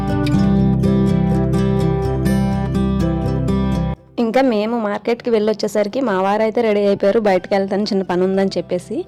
ఇంకా మేము మార్కెట్కి వెళ్ళి వచ్చేసరికి మా వారైతే రెడీ అయిపోయారు, బయటకు వెళ్తాను చిన్న పని ఉందని చెప్పేసి.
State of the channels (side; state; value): both; identical; correlation 1.00